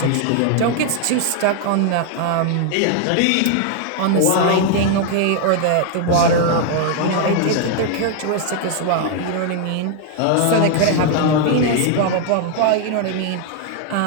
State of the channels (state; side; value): different; both; correlation 0.00